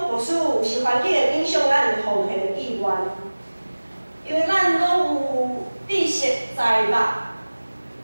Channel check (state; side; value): inverted; both; correlation -1.00